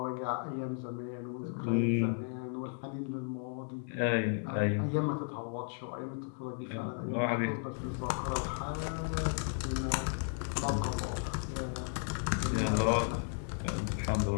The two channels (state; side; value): silent; right; 55 dB below the other